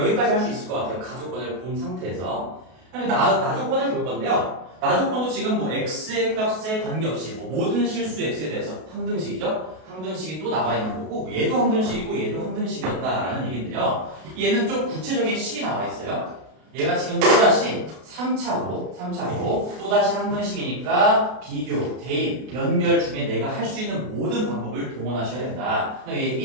할 수 있을 것 같아요. 가조건을 본 상태에서. 나조건을 볼 건데요. 나조건도 지금 뭐 x의 값에 관계없이 뭐 모든 실수 x에 대해서 항등식이죠. 항등식이 또 나와 있는 거고 얘도 항등식이고 얘도 항등식이었다라는 얘기인데요. 얘는 좀 구체적인 식이 나와 있어요. 얘가 지금 또다시 3차로 또다시 항등식이니까 비교, 대입, 연결 중에 내가 할 수 있는 모든 방법을 동원하셔야 된다. 얘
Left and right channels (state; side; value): late; left; 32 ms